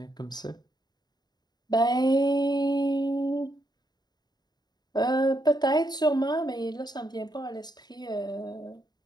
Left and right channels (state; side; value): late; right; 0.20 ms